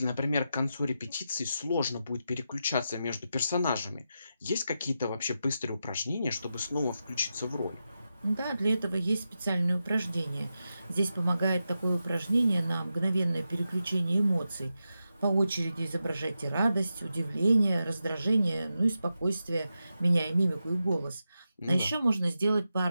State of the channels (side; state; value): both; inverted; correlation -0.89